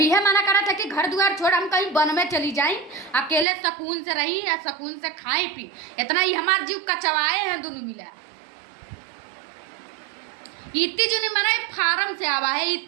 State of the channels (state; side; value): drops out; left; at 3.5 s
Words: यह मना करा था कि घर द्वार छोड़ हम कहीं वन में चली जाई अकेले सुकून से रही या सुकून से खाई पी इतना ही हमारे जीव कचवाए हैं दोनों मिला। इतनी जुनी मना फार्म से आवा है